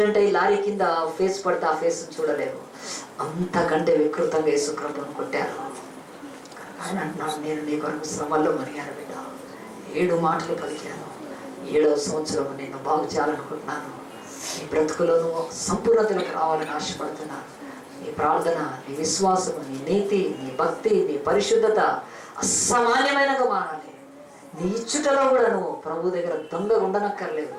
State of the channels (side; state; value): both; identical; correlation 1.00